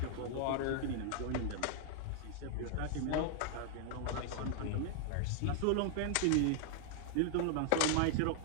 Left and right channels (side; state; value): both; different; correlation 0.00